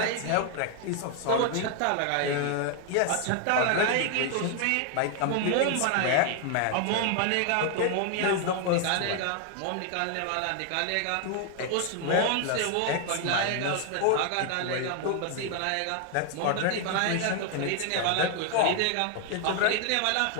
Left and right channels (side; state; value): both; different; correlation 0.00